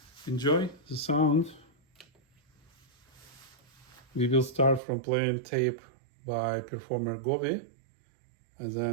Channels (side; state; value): left; drops out; at 4.8 s